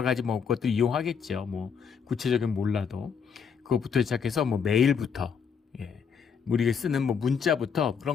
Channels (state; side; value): quieter; right; 6.6 dB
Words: 가지 뭐 것들 이용하겠죠. 뭐 구체적인 몰라도 그것부터 시작해서 뭐 메일부터 우리가 쓰는 뭐 문자부터 그런